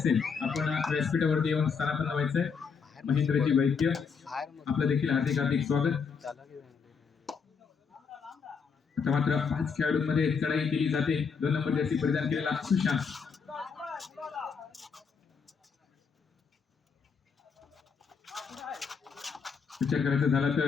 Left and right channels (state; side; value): quieter; right; 5.8 dB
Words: आपण व्यासपीठावरती येऊन स्थानापन्न व्हायचंय. महेंद्रजी वैद्य आपलं देखील हार्दिक हार्दिक स्वागत. आता मात्र 5 खेळाडूंमध्ये चढाई केली जाते. 2 नंबर जर्सी परिधान केलेला सुशांत. विचार करायचा झाला